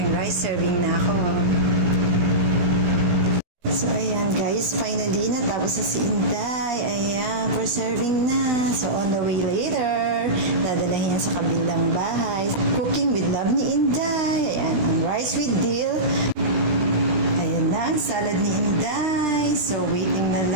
rice. Serving na ako. So, ayan guys. Finally, natapos na si Inday. Ayan, for serving na. So, on the way later, dadalahin yan sa kabilang bahay. Cooking with love ni Inday. Ayan, ang rice with dill. Ayan na, ang salad ni Inday. So, waiting na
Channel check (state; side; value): late; left; 17 ms